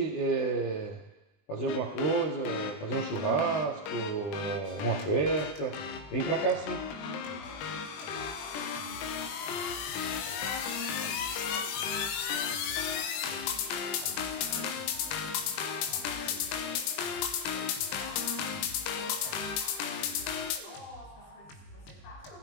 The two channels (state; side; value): late; right; 20 ms